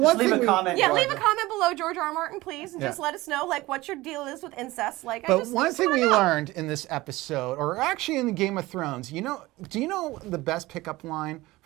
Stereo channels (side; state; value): left; quieter; 19.3 dB